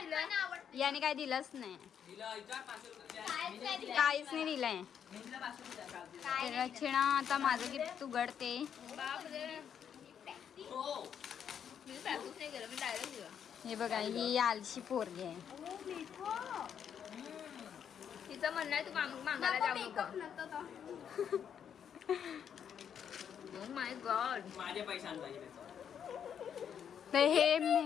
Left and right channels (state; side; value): quieter; right; 8.3 dB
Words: याने काय दिलंच नाही, हिला विचार 500 रुपये काय दिलं? काहीच नाही दिलंय. तर रचना आता माझं गिफ्ट उघडते. हो. मी पॅकच नाही केलं, मी डायरेक्ट दिलं. हे बघा, ही आलशी पोरगी आहे. तिचं म्हणणं आहे तू मागायला जाऊ नको. Oh my God. माझे पैसे आणता येईल. तर हे